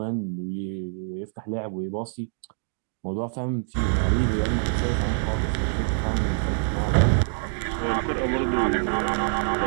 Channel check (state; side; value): silent; left; digital silence